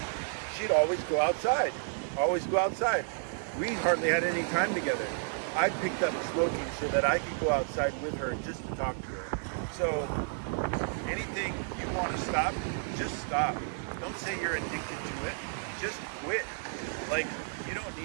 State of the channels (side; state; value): left; silent; 57 dB below the other